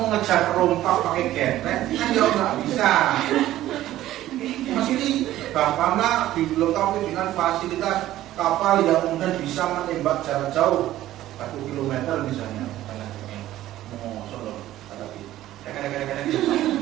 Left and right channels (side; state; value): left; quieter; 14.2 dB